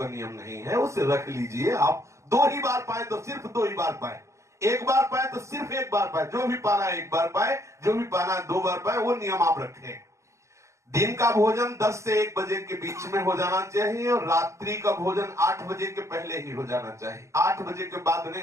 नियम नहीं है, उसे रख लीजिए। आप 2 ही बार पाए तो सिर्फ 2 ही बार पाए, 1 बार पाए तो सिर्फ 1 बार पाए, जो भी पाना है 1 बार पाए, जो भी पाना है 2 बार पाए, वो नियम आप रखें। दिन का भोजन 10 से 1 बजे के बीच में हो जाना चाहिए और रात्रि का भोजन 8 बजे के पहले ही हो जाना चाहिए, 8 बजे के बाद नहीं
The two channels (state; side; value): late; left; 0.14 ms